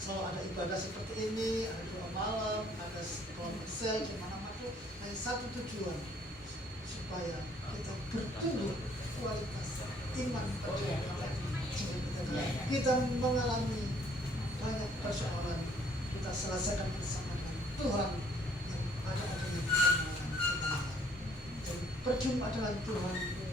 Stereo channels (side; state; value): both; normal; correlation 0.63